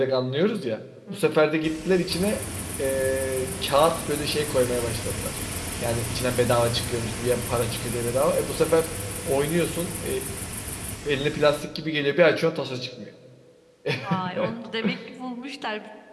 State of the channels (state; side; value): identical; both; correlation 1.00